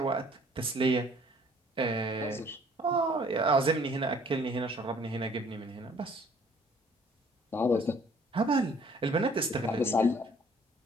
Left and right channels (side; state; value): both; normal; correlation 0.58